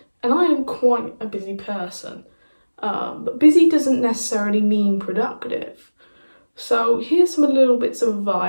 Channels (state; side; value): inverted; both; correlation -1.00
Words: And I am quite a busy person, but busy doesn't necessarily mean productive. So here's some little bits of